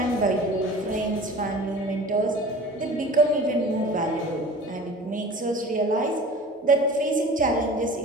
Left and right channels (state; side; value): normal; both; correlation 0.40